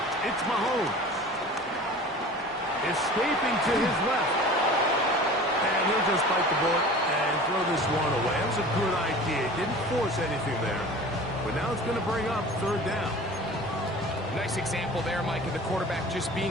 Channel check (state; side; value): normal; both; correlation 0.40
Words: it's Mahomes. Escaping to his left. And he'll just bite the bullet and throw this one away. That was a good idea. Didn't force anything there. But now it's going to bring up third down. Nice example there, Mike, of the quarterback just